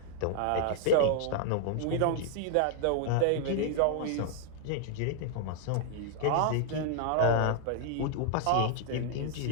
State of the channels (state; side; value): different; both; correlation -0.01